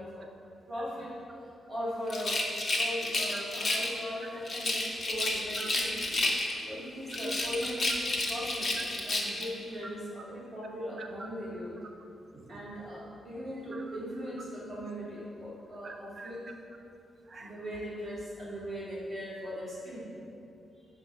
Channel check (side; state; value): both; normal; correlation 0.83